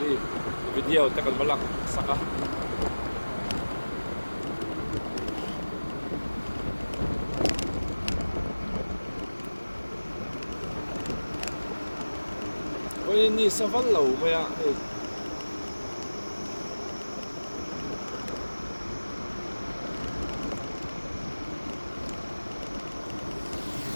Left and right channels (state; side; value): inverted; both; correlation -1.00